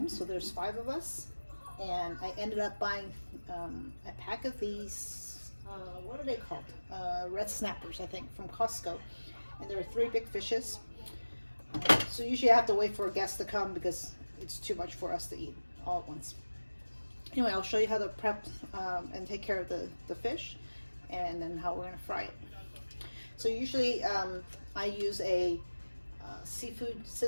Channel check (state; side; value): inverted; both; correlation -1.00